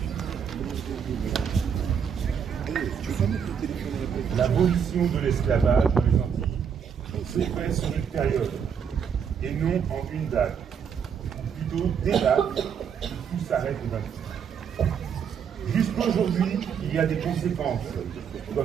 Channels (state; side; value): quieter; left; 7.3 dB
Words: L'abolition de l'esclavage dans les Antilles s'est faite sur une période et non en une date. Plutôt des dates, tout s'arrête au 28. Jusqu'aujourd'hui, il y a des conséquences,